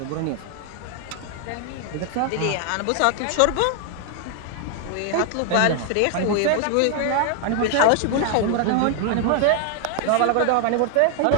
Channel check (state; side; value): different; both; correlation 0.00